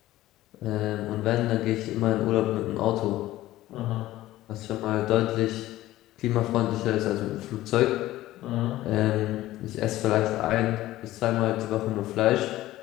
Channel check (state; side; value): quieter; right; 15.7 dB